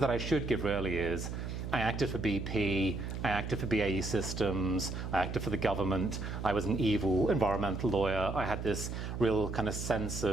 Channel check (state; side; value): noise; right; hum, 5 dB below the sound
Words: I should give really is, I acted for BP, I acted for BAE Systems, I acted for the government, I was an evil environmental lawyer, I had this real kind of sense